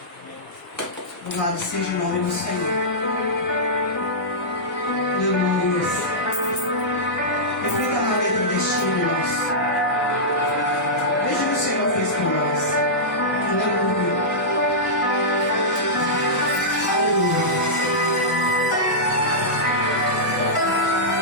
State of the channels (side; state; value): both; normal; correlation -0.13